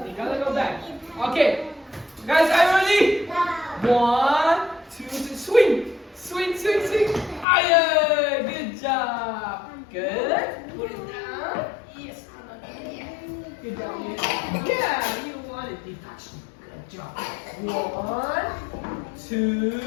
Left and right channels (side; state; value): right; drops out; at 7.5 s